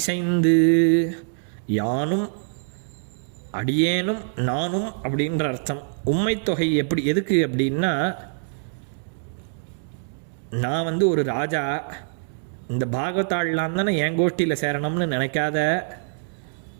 யானும் அடியேனும் நானும் அப்படின்ற அர்த்தம். உம்மைத்தொகை எதுக்கு அப்படின்னா, நான் ஒரு ராஜா, இந்த பாகவதாள்லாம் தானே என் கோஷ்டியில் சேரணும்னு நினைக்காத,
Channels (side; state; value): left; silent; digital silence